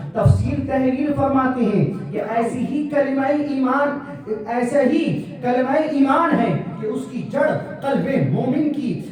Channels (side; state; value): both; identical; correlation 1.00